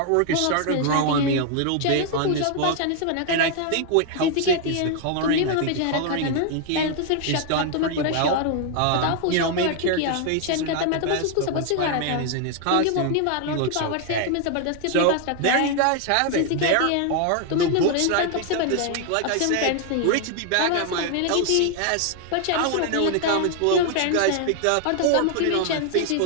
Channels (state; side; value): different; both; correlation 0.00